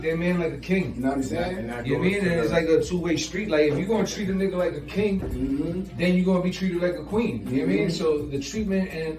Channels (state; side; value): identical; both; correlation 1.00